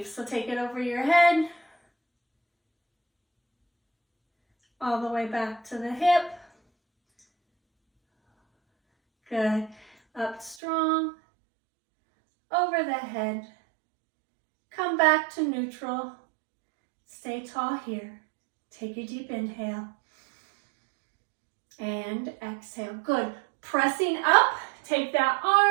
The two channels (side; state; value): left; drops out; at 10.6 s